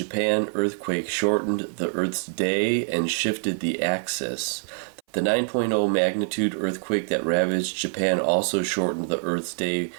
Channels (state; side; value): silent; left; 62 dB below the other